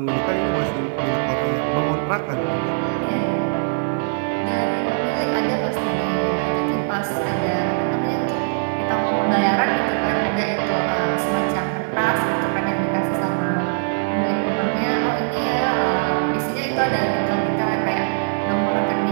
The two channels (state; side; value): silent; left; 62 dB below the other